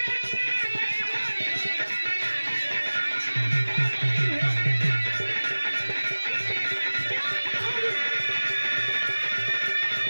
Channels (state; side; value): inverted; both; correlation -1.00